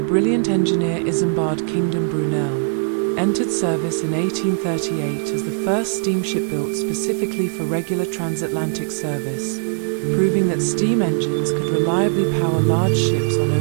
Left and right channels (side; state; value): left; silent; digital silence